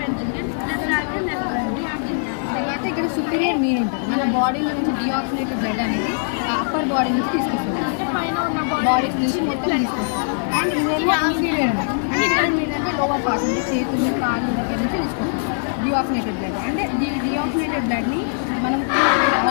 తర్వాత ఇక్కడ సుపీరియర్ మీన్ ఉంటుంది. మన బాడీలో నుంచి డిఆక్సినేటెడ్ బ్లడ్ అనేది అప్పర్ బాడీ నుంచి తీసుకొస్తుంది, బాడీస్ నుంచి మొత్తం తీసుకొస్తుంది. అండ్ ఇదేమో ఇన్ఫీరియర్ ఉంటుంది. అంటే ఇక్కడ ఏంటంటే లోవర్ పార్ట్ నుంచి చేతులు కాళ్ళు దగ్గర నుంచి తీసుకొస్తుంది డిఆక్సినేటెడ్ బ్లడ్. అంటే డిఆక్సినేటెడ్ బ్లడ్ని మనం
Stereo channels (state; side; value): silent; right; digital silence